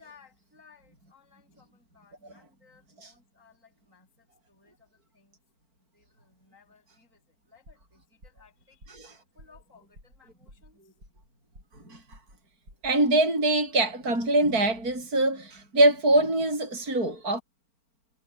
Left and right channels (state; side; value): late; left; 4.4 ms